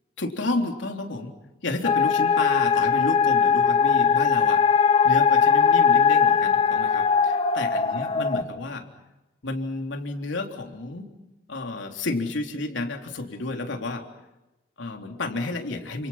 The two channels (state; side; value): quieter; right; 5.2 dB